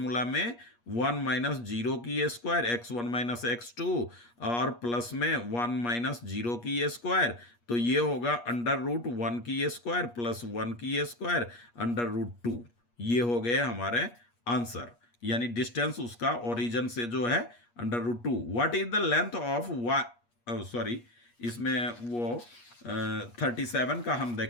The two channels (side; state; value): right; late; 8.4 ms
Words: में 1 माइनस जीरो की स्क्वायर x1 माइनस x2 और प्लस में 1 माइनस जीरो की स्क्वायर, तो ये होगा अंडर रूट 1 की स्क्वायर प्लस 1 की स्क्वायर अंडर रूट 2। ये हो गए हमारे आंसर, यानी डिस्टेंस उसका ओरिजिन से जो है under root 2। What is the length of sorry, इसमें वो 37 का हम